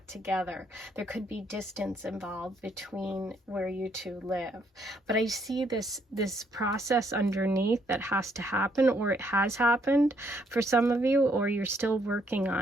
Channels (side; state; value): both; normal; correlation 0.70